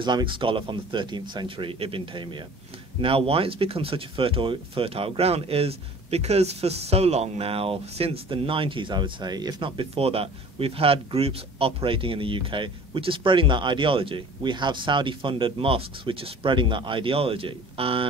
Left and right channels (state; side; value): normal; both; correlation 0.45